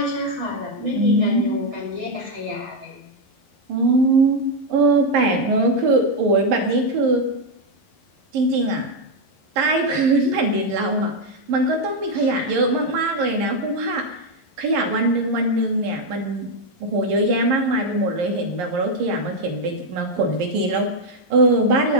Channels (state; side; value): late; left; 11 ms